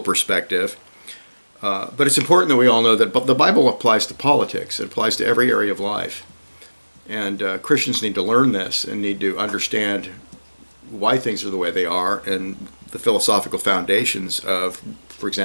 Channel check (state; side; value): inverted; both; correlation -1.00